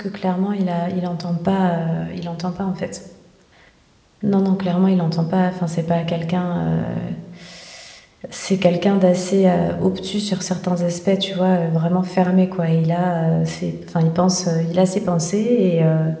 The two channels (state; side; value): identical; both; correlation 1.00